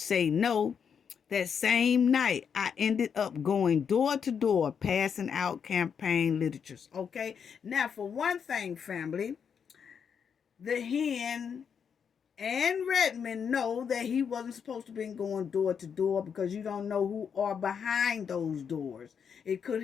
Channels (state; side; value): quieter; right; 7.1 dB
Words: no. That same night, I ended up going door to door, passing out campaign literatures. Okay? Now, for one thing, family, the hen and Redmond know that he wasn't supposed to be going door to door because you don't know who are behind those doors. It could